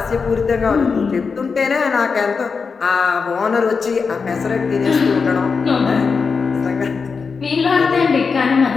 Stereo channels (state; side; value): quieter; right; 5.2 dB